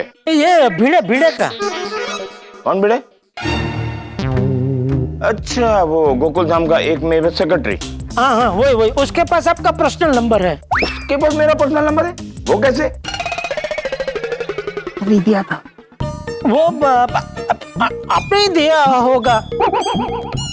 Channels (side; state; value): both; identical; correlation 1.00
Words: ये भिड़े का. कौन भिड़े? अच्छा, वो गोकुलधाम का एक मेरे सेक्रेटरी. हाँ, वही. उसके पास आपका पर्सनल नंबर है. उसके पास मेरा पर्सनल नंबर है? वो कैसे? नहीं दिया था. वो आपने ही दिया होगा.